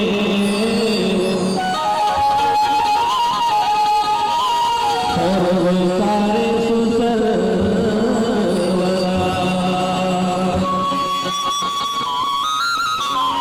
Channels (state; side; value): identical; both; correlation 1.00